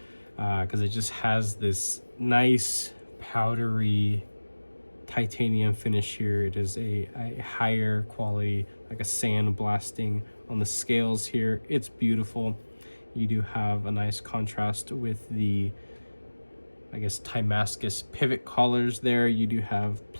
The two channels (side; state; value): both; inverted; correlation -1.00